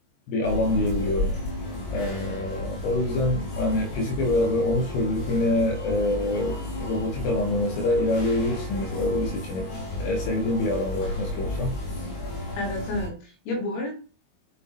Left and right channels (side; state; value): right; late; 21 ms